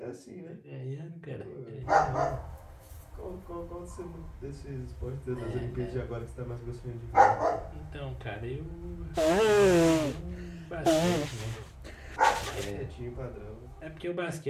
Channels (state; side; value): identical; both; correlation 1.00